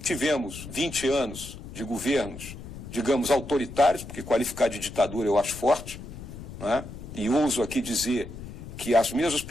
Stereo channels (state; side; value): noise; left; rumble, 12 dB below the sound